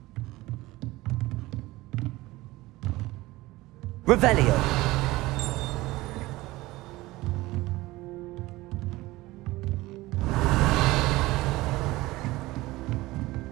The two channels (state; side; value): quieter; left; 19.2 dB